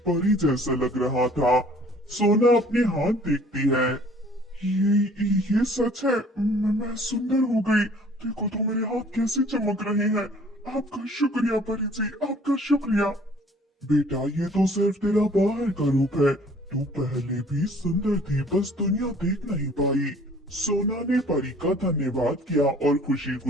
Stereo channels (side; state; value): both; normal; correlation 0.54